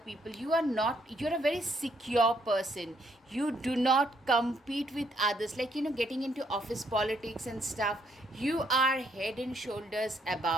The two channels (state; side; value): normal; both; correlation 0.71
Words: You're a very secure person. You do not compete with others, like, getting into office politics and stuff. You are head and shoulders